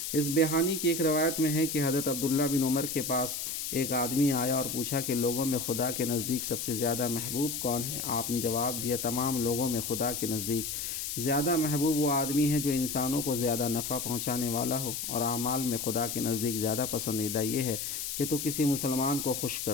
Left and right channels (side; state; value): left; noise; hiss, 4 dB below the sound